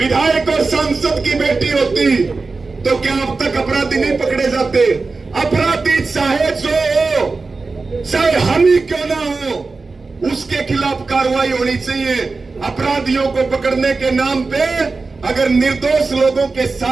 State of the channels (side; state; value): left; quieter; 4.0 dB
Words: और सांसद की बेटी होती तो क्या अब तक अपराधी नहीं पकड़े जाते? अपराधी चाहे जो हो, चाहे हम ही क्यों ना हो, उसके खिलाफ कार्रवाई होनी चाहिए। अपराधियों को पकड़ने के नाम पे अगर निर्दोष लोगों के